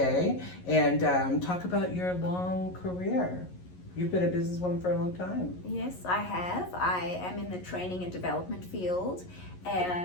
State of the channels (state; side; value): late; right; 11 ms